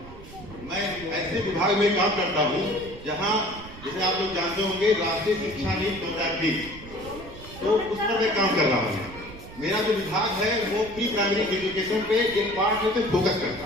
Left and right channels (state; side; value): noise; right; rumble, 16 dB below the sound